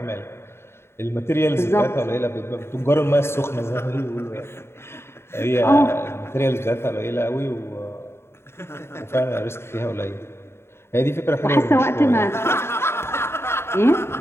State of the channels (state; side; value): late; right; 0.12 ms